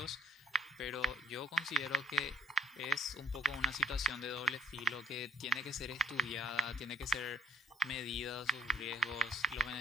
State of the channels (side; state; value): both; normal; correlation 0.53